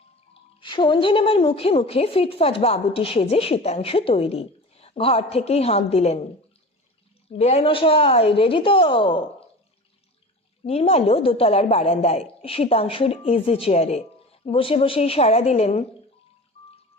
সন্ধে নামার মুখে মুখে ফিটফাট বাবুটি সেজে শীতাংশু তৈরি। ঘর থেকেই হাঁক দিলেন, বেআই মশাই রেডি তো? নির্মাল্য দোতলার বারান্দায় শীতাংশুর ইজি চেয়ারে বসে বসেই সাড়া দিলেন,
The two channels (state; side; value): normal; both; correlation 0.35